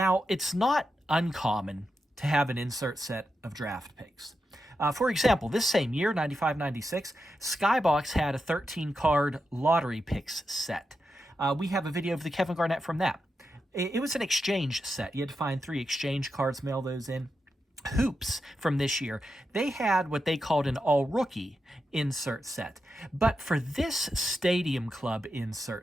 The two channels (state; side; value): normal; both; correlation 0.88